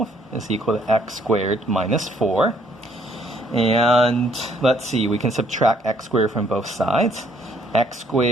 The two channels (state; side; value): normal; both; correlation 0.65